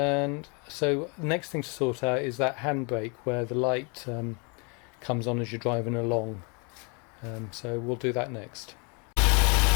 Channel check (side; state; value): right; quieter; 33.4 dB